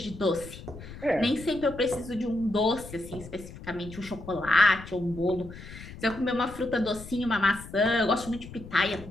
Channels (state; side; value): noise; left; rumble, 14 dB below the sound